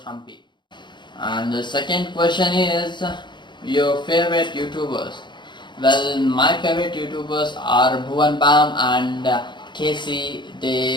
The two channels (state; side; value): late; right; 0.22 ms